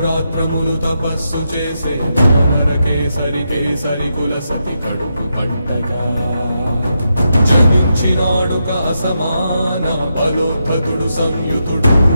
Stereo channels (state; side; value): inverted; both; correlation -0.84